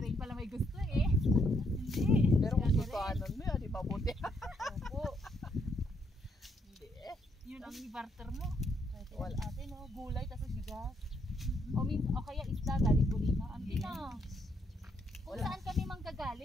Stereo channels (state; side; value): normal; both; correlation 0.74